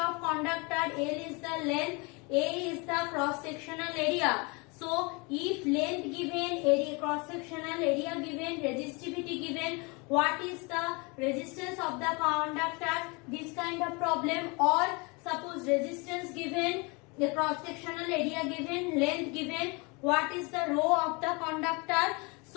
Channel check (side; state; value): right; quieter; 29.0 dB